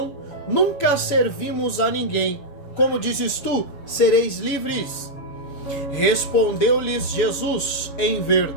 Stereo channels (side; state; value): right; late; 7.0 ms